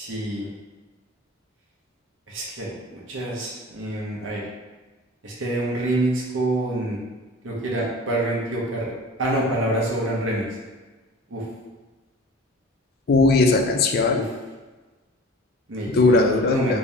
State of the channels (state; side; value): normal; both; correlation 0.41